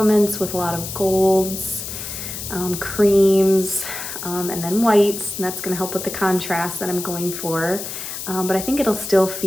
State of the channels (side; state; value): left; noise; hiss, 7 dB below the sound